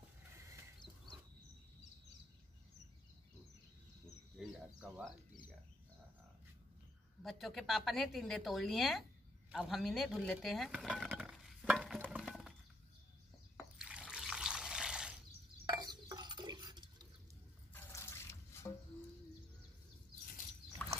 बच्चों के पापा ने टिंडे तोड़ लिए हैं, अब हम इन्हें धुल लेते हैं।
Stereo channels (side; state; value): both; normal; correlation 0.72